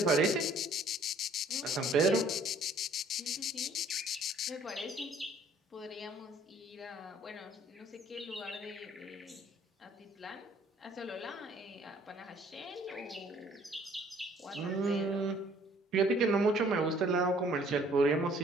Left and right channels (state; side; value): normal; both; correlation 0.58